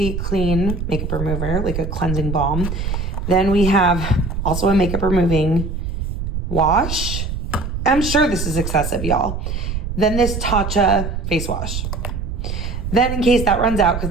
Clean makeup remover, like a cleansing balm. Then we have also a makeup removing wash. I'm sure this is excessive, y'all. Then this Tatcha face wash. Then in case that runs out, because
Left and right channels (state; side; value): noise; right; rumble, 4 dB below the sound